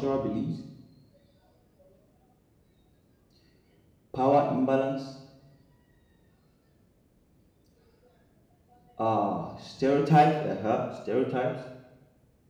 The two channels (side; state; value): both; identical; correlation 1.00